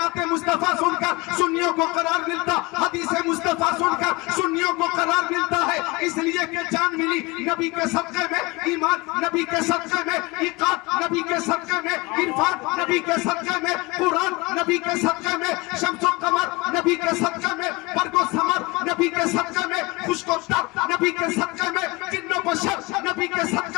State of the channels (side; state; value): right; quieter; 24.2 dB